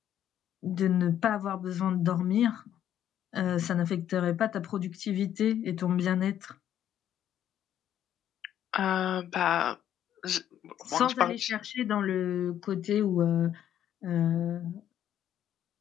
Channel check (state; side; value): quieter; right; 10.7 dB